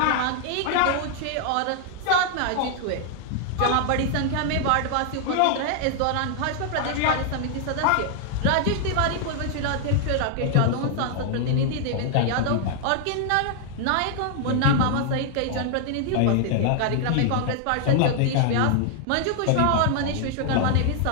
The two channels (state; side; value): different; both; correlation 0.00